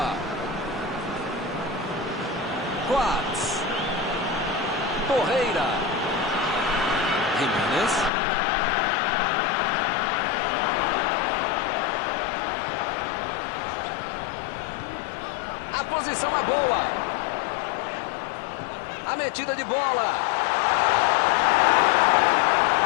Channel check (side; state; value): right; drops out; at 8.1 s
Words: Coates. Torreira. Jimenez. A posição é boa. A metida de bola.